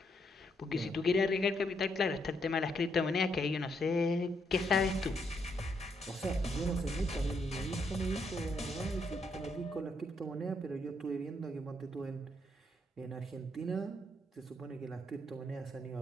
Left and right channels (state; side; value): normal; both; correlation 0.76